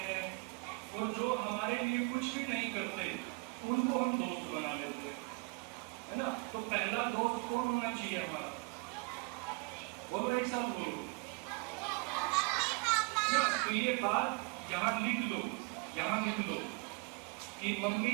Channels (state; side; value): quieter; left; 31.3 dB